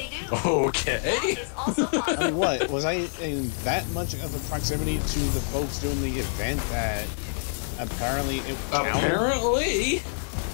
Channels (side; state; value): right; silent; digital silence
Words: do. Okay. I mean, what? Was I in that much of a proximity to the folks doing the event that apparently it counted? Apparently?